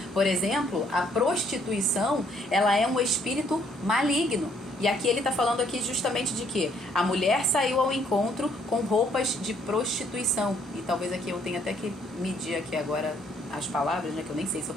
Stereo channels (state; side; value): normal; both; correlation 0.66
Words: Por exemplo, a prostituição, ela é um espírito maligno. E aqui ele está falando aqui justamente de que a mulher saiu ao encontro com roupas de prostituição. E talvez aqui eu tenha até que medir aqui agora as palavras, né? Que eu nem sei se eu